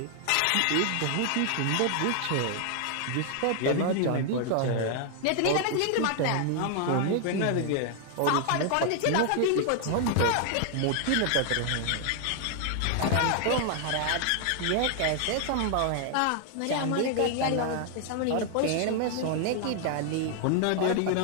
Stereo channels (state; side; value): different; both; correlation 0.00